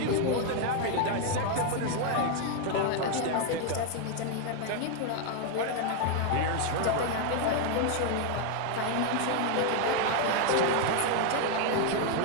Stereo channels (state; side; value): different; both; correlation 0.00